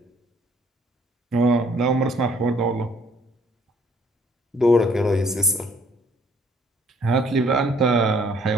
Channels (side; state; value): both; normal; correlation 0.61